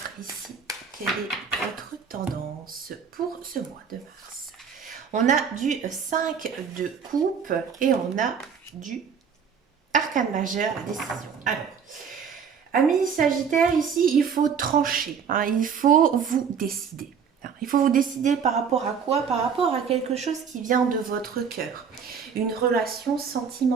ici quelle est votre tendance pour ce mois de mars. On a du 5 de coupe et on a du arcane majeur, la décision. Alors, amis Sagittaire, ici, il faut trancher, hein, il faut vous décider. Il faut vous décider par rapport à quoi? Par rapport à quelque chose qui vient de votre cœur, une relation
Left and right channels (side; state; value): left; quieter; 6.8 dB